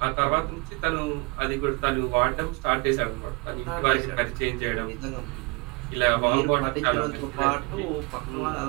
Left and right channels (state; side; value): quieter; left; 27.1 dB